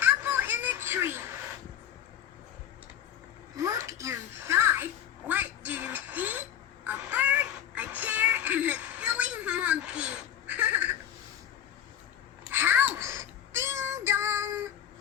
apple in a tree. Look inside. What do you see? A bird, a chair, and a silly monkey. House. Ding dong.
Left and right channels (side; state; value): right; quieter; 10.1 dB